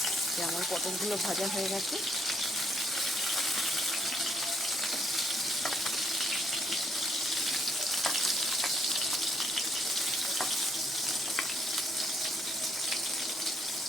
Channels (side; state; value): right; noise; rumble, 30 dB below the sound